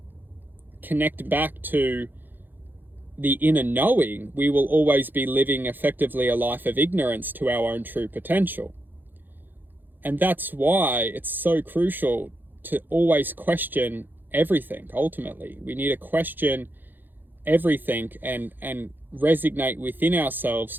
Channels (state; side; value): late; left; 0.091 ms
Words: connect back to the inner knowing, we will always be living effectively a life of ignorance to our own true potential. And that's why it's so crucial to always question everything. Ultimately, we need to question everything and resonate within ourselves